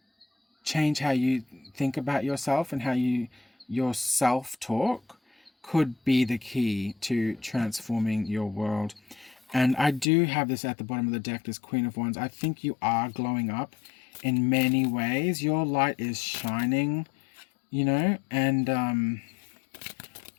change how you think about yourself, and how your self-talk could be the key to transforming your world. And I do have this at the bottom of the deck, this Queen of Wands. I think you are glowing up in many ways. Your light is shining, you know, and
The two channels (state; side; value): drops out; right; at 10.1 s